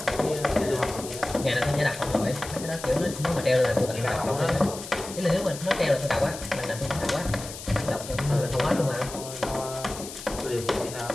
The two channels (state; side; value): noise; left; hiss, 12 dB below the sound